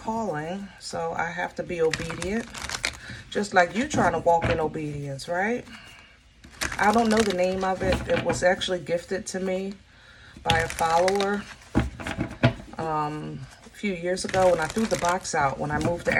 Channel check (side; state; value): both; identical; correlation 1.00